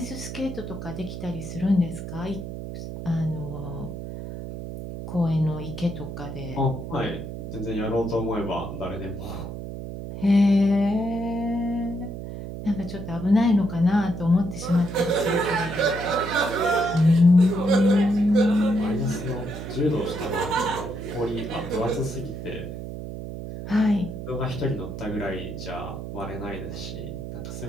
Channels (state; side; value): noise; right; hum, 8 dB below the sound